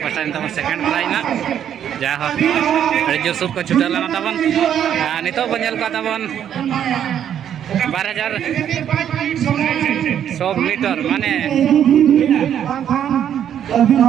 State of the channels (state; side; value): quieter; left; 9.6 dB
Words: पास्टा तमन सेकंड प्राइज ना जा हो अरे जो सब को छुटा लाना तमन नितो बनेल का तमन 12100 मीटर माने